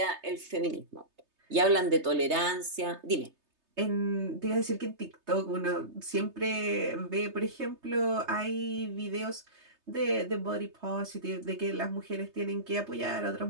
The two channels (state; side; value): late; left; 3.3 ms